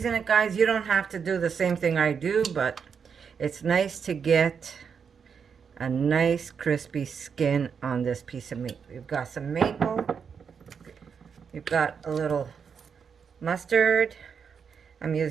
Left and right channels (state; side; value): quieter; left; 6.5 dB